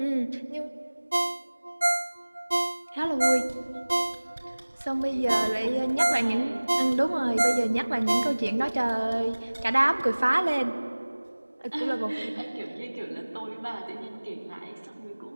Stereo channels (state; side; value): inverted; both; correlation -1.00